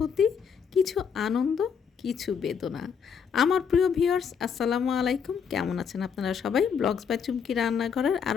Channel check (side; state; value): right; quieter; 6.8 dB